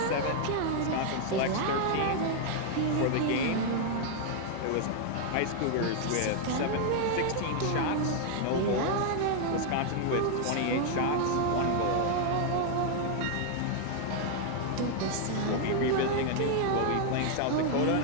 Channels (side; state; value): both; different; correlation 0.00